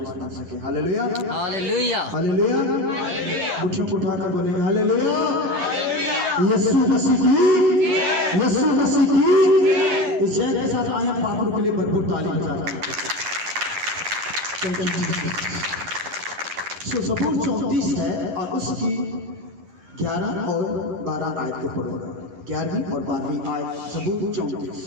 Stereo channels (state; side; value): late; left; 11 ms